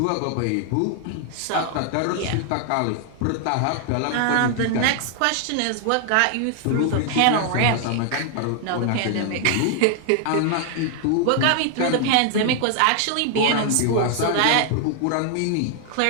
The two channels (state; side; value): different; both; correlation 0.00